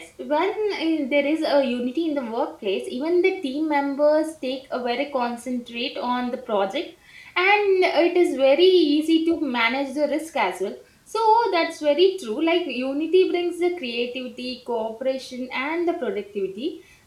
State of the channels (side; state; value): both; identical; correlation 1.00